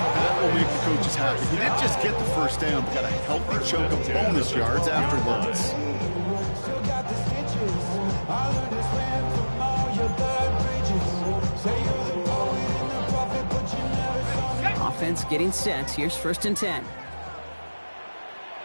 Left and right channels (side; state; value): both; inverted; correlation -1.00